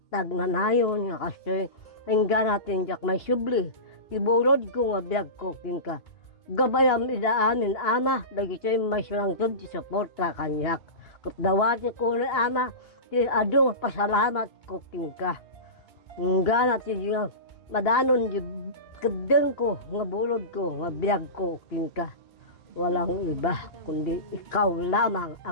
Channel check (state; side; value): late; right; 2.8 ms